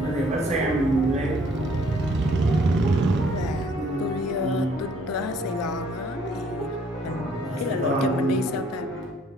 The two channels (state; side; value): normal; both; correlation 0.62